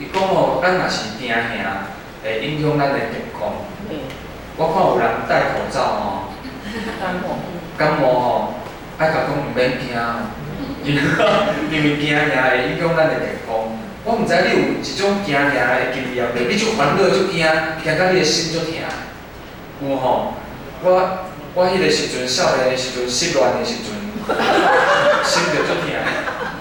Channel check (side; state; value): both; identical; correlation 1.00